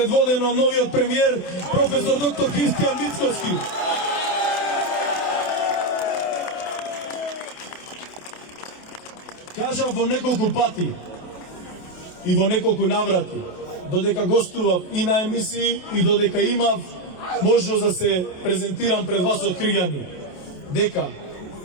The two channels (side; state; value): right; late; 28 ms